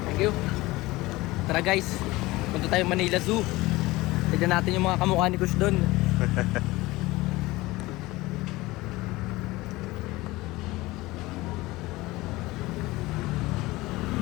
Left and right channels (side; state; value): right; quieter; 20.0 dB